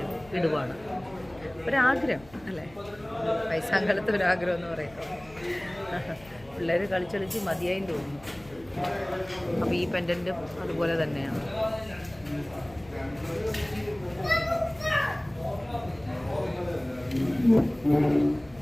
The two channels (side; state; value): left; noise; hum, 23 dB below the sound